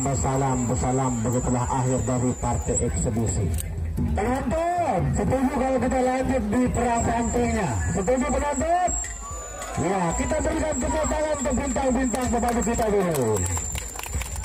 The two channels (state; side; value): identical; both; correlation 1.00